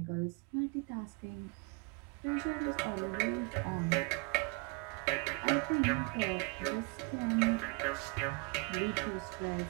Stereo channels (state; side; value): quieter; left; 30.1 dB